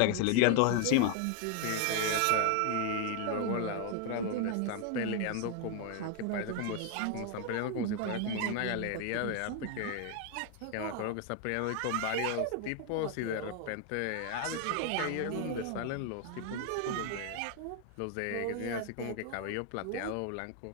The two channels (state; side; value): different; both; correlation 0.01